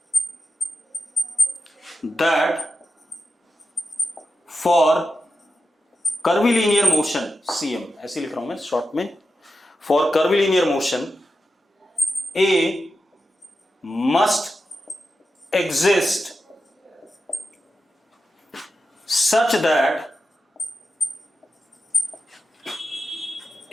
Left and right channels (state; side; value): normal; both; correlation 0.90